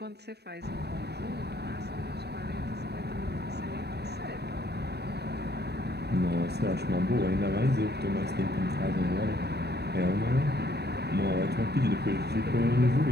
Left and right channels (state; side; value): late; left; 0.48 ms